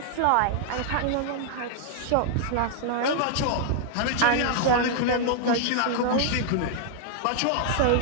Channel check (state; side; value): different; both; correlation -0.01